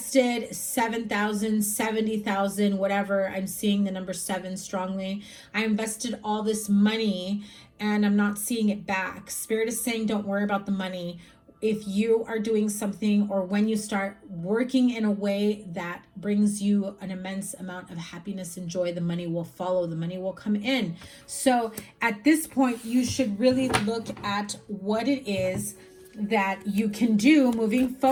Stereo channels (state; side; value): identical; both; correlation 1.00